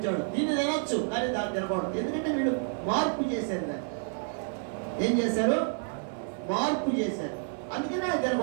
దీన్ని తినొచ్చు కానీ దాన్ని తినకూడదు. ఎందుకంటే వీళ్ళు మార్పు చేశారు. దాన్ని ఏం చేశారు? మార్పు చేశారు. అందుకనే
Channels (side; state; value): left; silent; 57 dB below the other